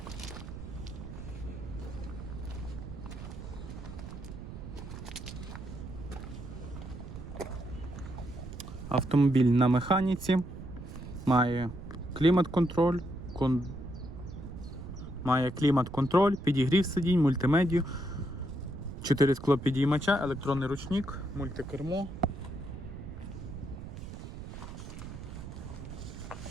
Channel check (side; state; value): right; noise; rumble, 10 dB below the sound